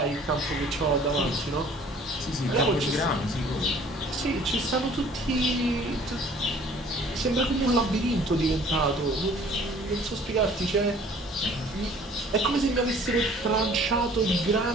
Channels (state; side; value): normal; both; correlation 0.53